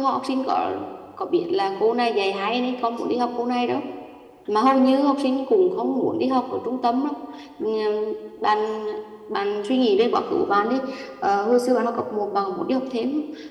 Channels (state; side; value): identical; both; correlation 1.00